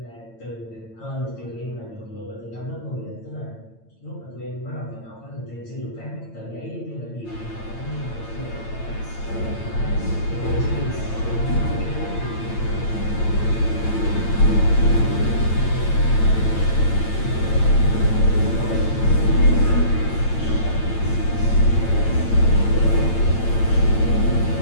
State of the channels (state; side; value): late; right; 8.9 ms